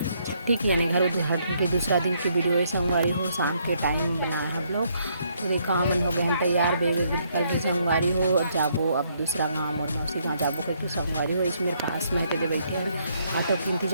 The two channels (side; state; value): both; inverted; correlation -0.71